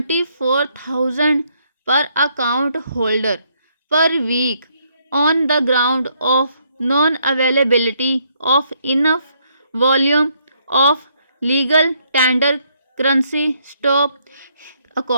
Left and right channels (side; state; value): both; inverted; correlation -0.72